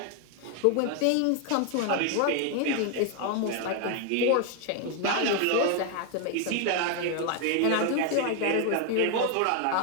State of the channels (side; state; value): both; different; correlation 0.01